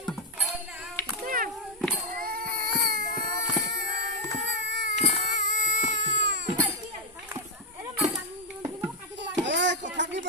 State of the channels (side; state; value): both; normal; correlation 0.01